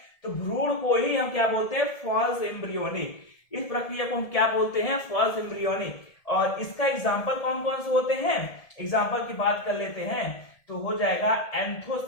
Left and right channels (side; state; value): right; late; 1.7 ms